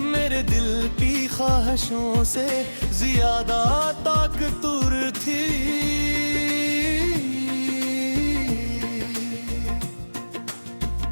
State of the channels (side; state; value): both; inverted; correlation -1.00